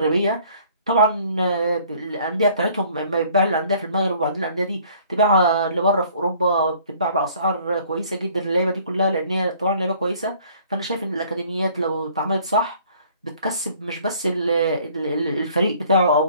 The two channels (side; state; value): both; inverted; correlation -0.57